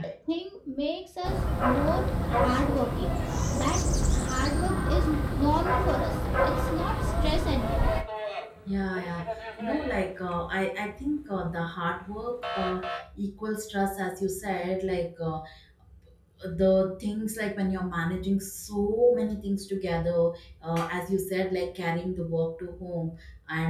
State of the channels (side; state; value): both; identical; correlation 1.00